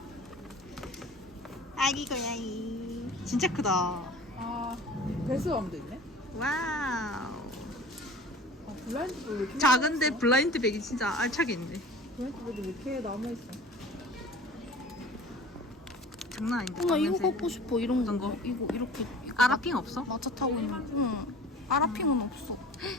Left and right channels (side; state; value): both; normal; correlation 0.42